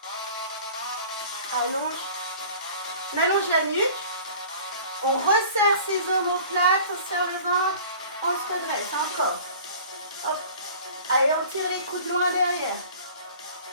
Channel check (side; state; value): both; inverted; correlation -0.45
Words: Allonge. On allonge la nuque. On resserre ses omoplates. On serre le ventre. On se redresse. Encore. Hop. Allez, on tire les coudes loin derrière.